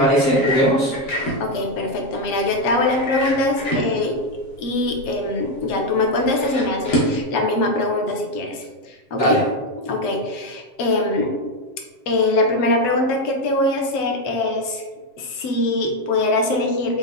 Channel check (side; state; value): right; late; 7.5 ms